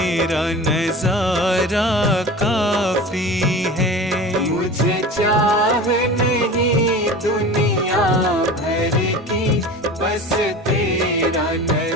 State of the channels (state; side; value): normal; both; correlation 0.35